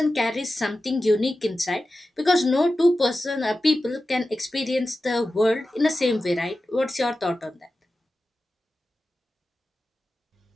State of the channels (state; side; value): normal; both; correlation 0.94